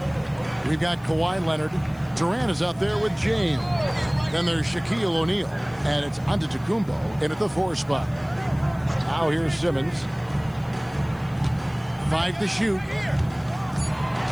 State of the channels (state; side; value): noise; left; hiss, 28 dB below the sound